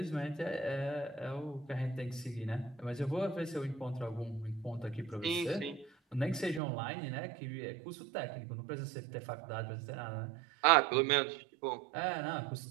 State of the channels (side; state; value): left; drops out; at 6.6 s